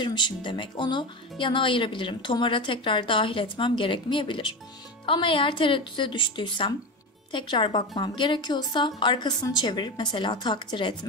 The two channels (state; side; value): normal; both; correlation 0.21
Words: demek. Onu yana ayırabilirim. Tomara tekrar dahil etmem gerekmeyebilir. Ama eğer tereddüte düştüysem, tekrar bakmam gerekiyorsa arkasını çevirip mesela takdir